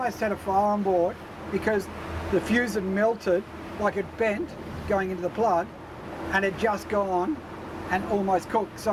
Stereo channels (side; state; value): both; identical; correlation 1.00